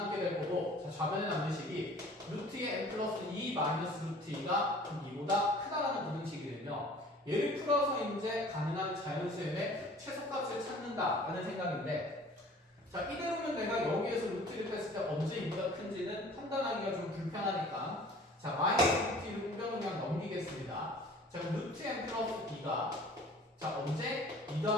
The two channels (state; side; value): normal; both; correlation 0.48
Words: 될 거고 자, 좌변에 남는 식이 루트의 n 플러스 2 마이너스 루트 2가 2보다 얘를 풀어서 이제 가능한 자연수의 최소값을 찾는다라는 생각인데, 자, 이대로면 내가 여기에서 루트를 뺐을 때 언제 2가 큰지는 판단하기가 좀 불편하니까, 자, 마이너스 루트 2를 우변으로 그냥 넘기겠습니다. 자, 그럼 루트 n 플러스 2가 자, 언제 2